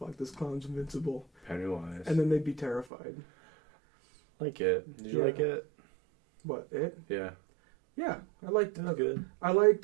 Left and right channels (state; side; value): drops out; left; at 2.9 s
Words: this clown's invincible. Pennywise. And then they'd be terrified. Like it. Did you like it? What, it? Yeah. Yeah, I liked it. That's good. I liked